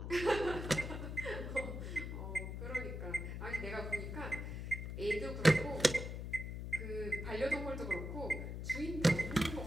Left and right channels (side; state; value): left; noise; hum, 5 dB below the sound